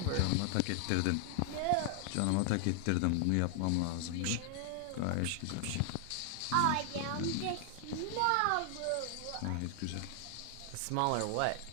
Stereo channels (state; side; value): different; both; correlation 0.00